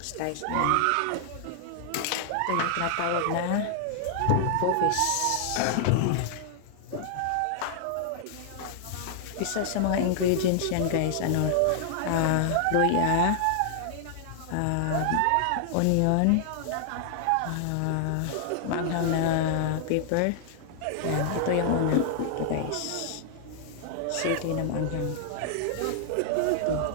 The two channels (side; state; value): both; different; correlation 0.00